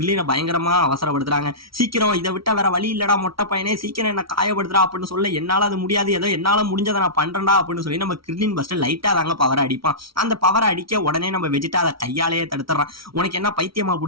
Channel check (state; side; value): late; left; 0.75 ms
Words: பயங்கரமா அவசரப்படுத்துறாங்க. சீக்கிரம் இதை விட்டா வேற வழி இல்லடா மொட்டை பையனே, சீக்கிரம் என்ன காயப்படுத்துறா அப்படின்னு சொல்ல, என்னால அது முடியாது, ஏதோ என்னால முடிஞ்சதை நான் பண்றேன்டா அப்படின்னு சொல்லி நம்ம கிர்லின் பஸ்ட் லைட்டா தாங்க பவரை அடிப்பான். அந்த பவரை அடிக்க உடனே நம்ம வெஜிடா அதை கையாலேயே தடுத்துறான். உனக்கு என்ன பைத்தியமா